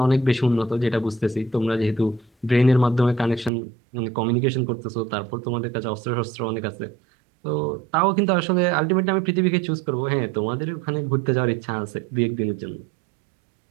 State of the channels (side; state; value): left; drops out; at 3.5 s